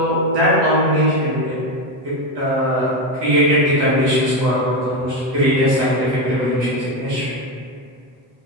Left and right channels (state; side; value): late; left; 8.0 ms